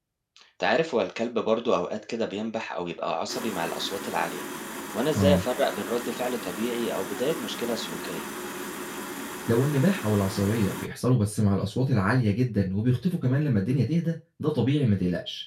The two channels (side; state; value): both; identical; correlation 1.00